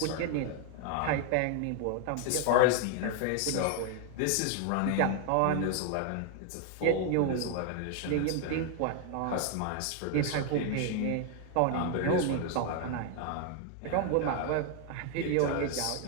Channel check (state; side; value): different; both; correlation 0.00